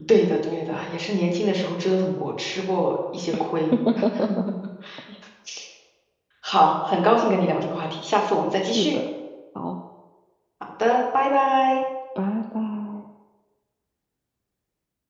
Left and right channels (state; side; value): identical; both; correlation 1.00